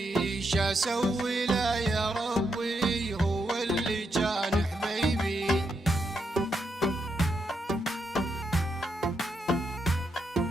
شاسوي له يا ربي هو اللي كان حبيبي.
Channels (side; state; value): both; normal; correlation 0.81